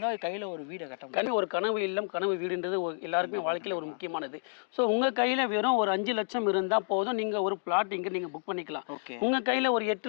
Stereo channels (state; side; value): silent; right; digital silence